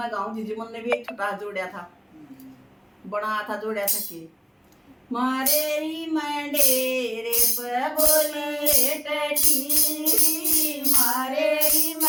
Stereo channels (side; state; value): both; identical; correlation 1.00